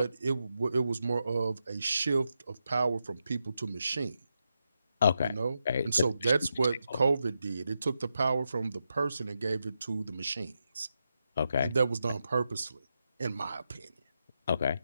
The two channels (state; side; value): inverted; both; correlation -0.86